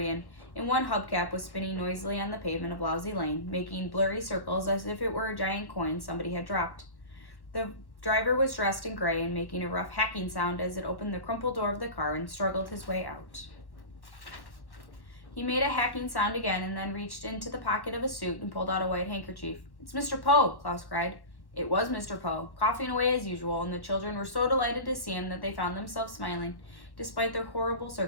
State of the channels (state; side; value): late; right; 1.1 ms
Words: and one hubcap was spinning noisily on the pavement of Lousy Lane, making blurry circles as if it were a giant coin somebody had dropped. The driver was dressed in gray and making a rough hacking sound as it opened the crumpled door of the car and struggled his way out. He made a hacking sound again and then reached into the pocket of his suit and pulled out a white handkerchief. "It's Mr. Poe," Klaus cried. It was Mr. Poe, coughing away as usual, and the children were so delighted to see him that they found themselves smiling, despite their horrible